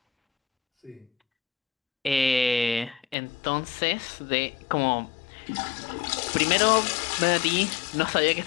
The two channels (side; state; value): right; drops out; at 3.2 s